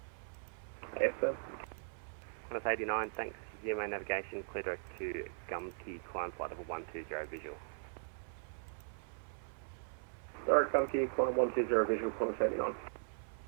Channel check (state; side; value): silent; left; 52 dB below the other